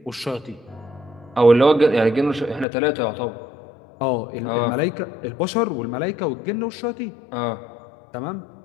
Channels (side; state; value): right; drops out; at 2.7 s